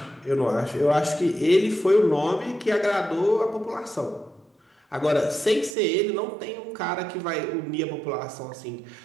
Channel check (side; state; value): left; drops out; at 5.8 s